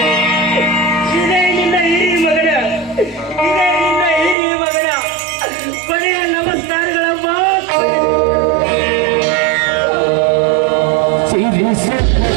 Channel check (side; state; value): left; drops out; at 4.4 s